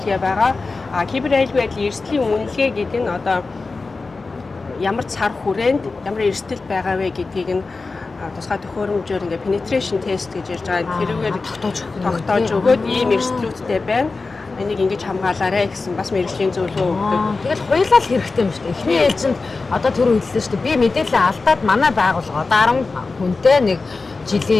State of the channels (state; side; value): quieter; right; 3.9 dB